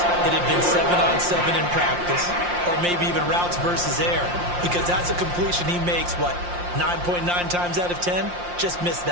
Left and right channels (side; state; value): left; late; 5.7 ms